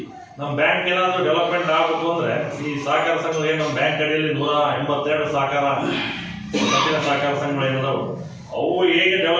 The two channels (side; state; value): both; identical; correlation 1.00